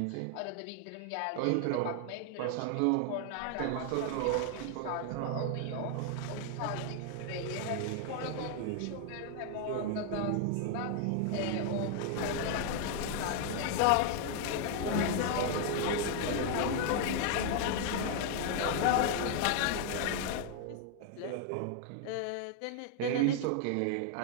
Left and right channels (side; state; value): both; different; correlation 0.00